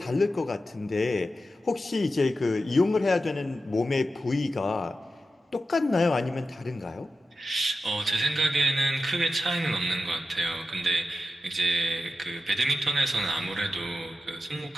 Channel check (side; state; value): both; normal; correlation 0.90